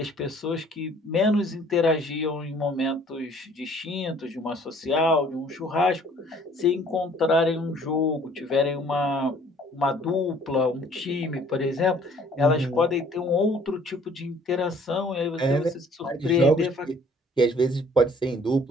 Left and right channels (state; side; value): normal; both; correlation 0.57